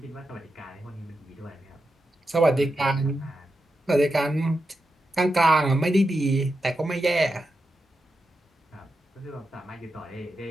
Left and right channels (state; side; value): normal; both; correlation 0.88